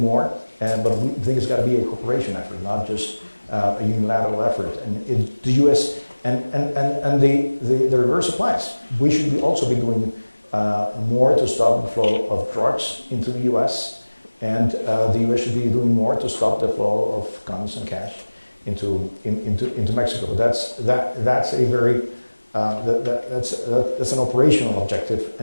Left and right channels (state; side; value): inverted; both; correlation -1.00